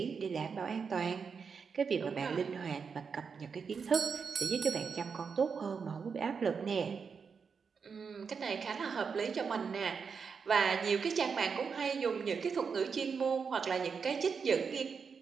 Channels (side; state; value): left; quieter; 5.8 dB